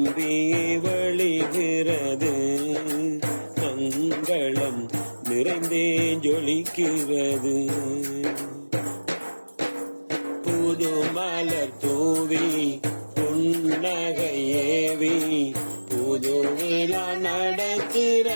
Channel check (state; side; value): inverted; both; correlation -1.00